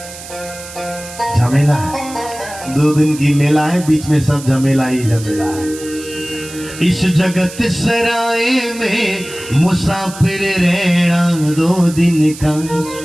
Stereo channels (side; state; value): right; noise; hiss, 14 dB below the sound